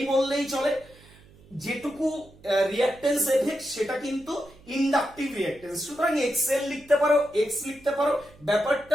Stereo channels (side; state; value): right; noise; hum, 25 dB below the sound